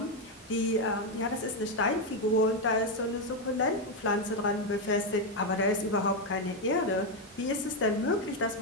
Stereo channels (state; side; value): normal; both; correlation 0.05